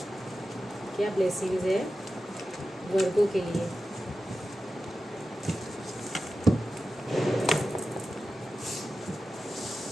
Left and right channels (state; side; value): normal; both; correlation 0.92